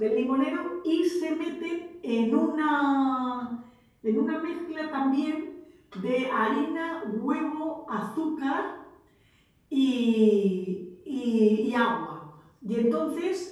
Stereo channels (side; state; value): both; identical; correlation 1.00